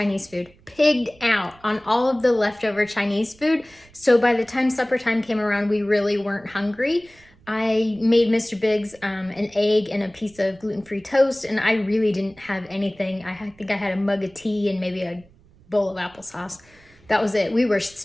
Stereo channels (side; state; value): right; noise; rumble, 28 dB below the sound